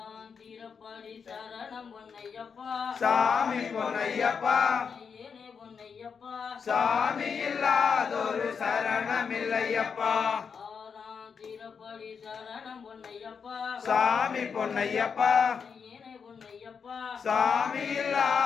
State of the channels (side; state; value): right; quieter; 6.2 dB